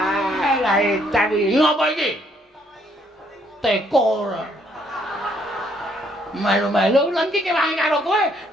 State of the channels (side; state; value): both; normal; correlation 0.68